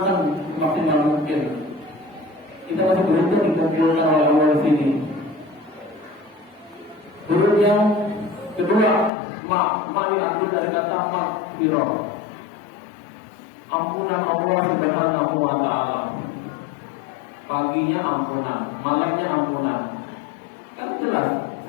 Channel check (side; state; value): right; drops out; at 9.1 s